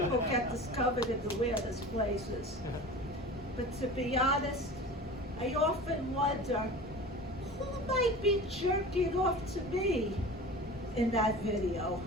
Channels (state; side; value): normal; both; correlation 0.36